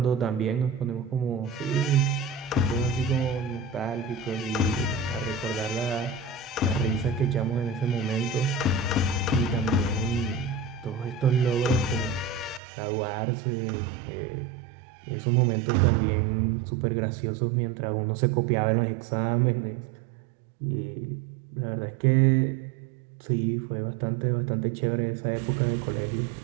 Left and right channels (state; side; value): drops out; left; at 12.6 s